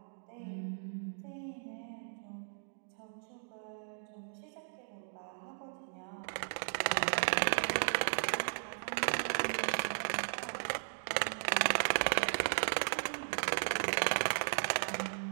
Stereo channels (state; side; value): silent; left; digital silence